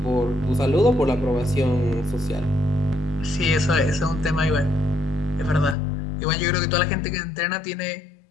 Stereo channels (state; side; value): drops out; right; at 5.8 s